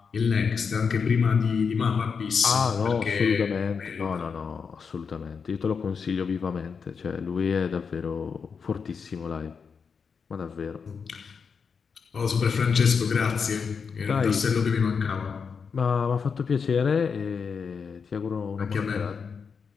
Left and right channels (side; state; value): right; quieter; 5.9 dB